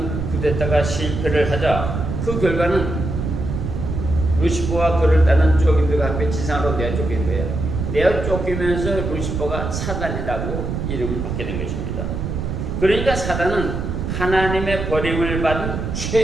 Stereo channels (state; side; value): noise; right; rumble, 4 dB below the sound